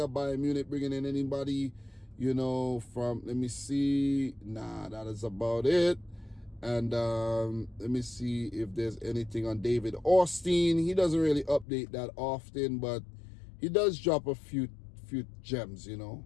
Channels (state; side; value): drops out; right; at 11.7 s